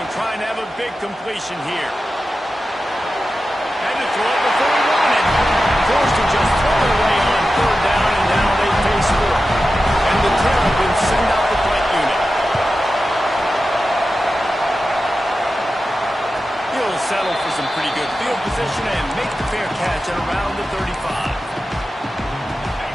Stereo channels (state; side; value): normal; both; correlation 0.93